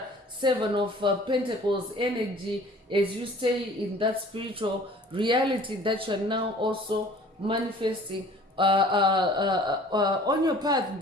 7 of Pentacles energy, as you stay in that spiritual reality that you're now also manifesting on your path,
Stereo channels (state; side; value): normal; both; correlation 0.49